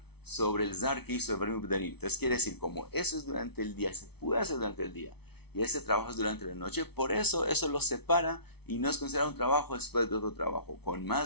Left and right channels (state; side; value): late; right; 0.98 ms